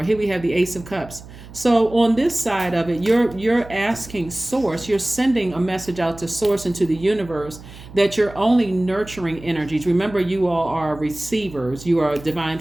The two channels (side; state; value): right; noise; hum, 17 dB below the sound